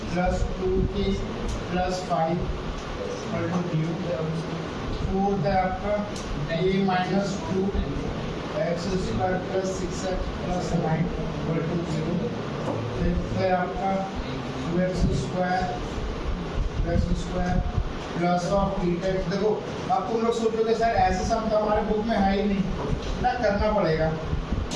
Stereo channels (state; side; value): identical; both; correlation 1.00